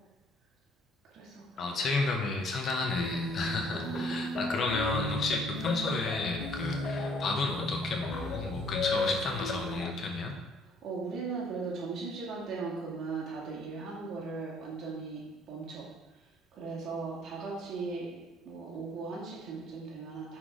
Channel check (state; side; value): normal; both; correlation 0.62